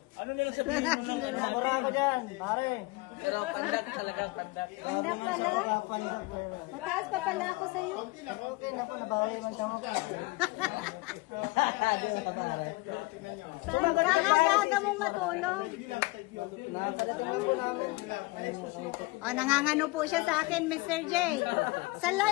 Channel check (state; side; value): quieter; right; 23.7 dB